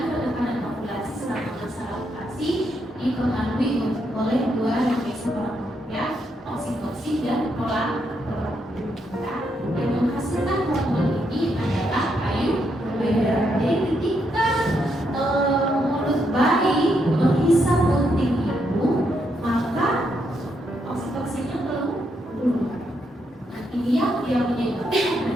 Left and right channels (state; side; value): normal; both; correlation 0.78